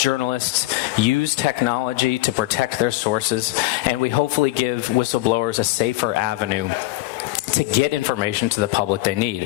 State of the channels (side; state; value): right; quieter; 18.6 dB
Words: use technology to protect their sources, and we hopefully give whistleblowers a safer avenue to get information to the public they